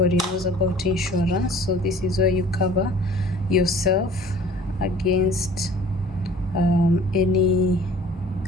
knows about insurance. So this is where you cover yourself against any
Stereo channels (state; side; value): normal; both; correlation 0.49